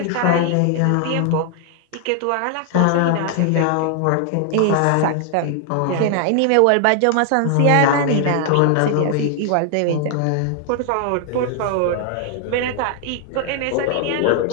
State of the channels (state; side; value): different; both; correlation 0.00